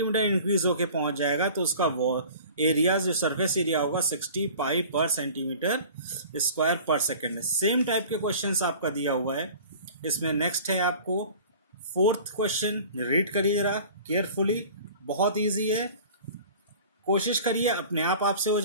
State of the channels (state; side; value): inverted; both; correlation -0.43